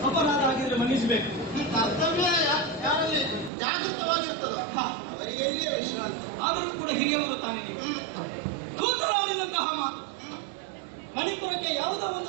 ಅಪರಾಧ ಆಗಿದ್ರೆ ಮನ್ನಿಸಬೇಕು. ಕರ್ತವ್ಯ ಯಾರಲ್ಲಿ ಜಾಗೃತವಾಗಿರ್ತದ ಅವರಿಗೆ ಎಲ್ಲಿಯೇ ವಿಶ್ರಾಂತಿ. ಆದರೂ ಕೂಡ ಹಿರಿಯವರು ತಾನೆ ನೀವು. ಕೂತರಾಡಿದಂತಹ ಮಾತು ಮಣಿಪುರಕ್ಕೆ ಯಾವುದೋ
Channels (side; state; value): left; drops out; at 3.5 s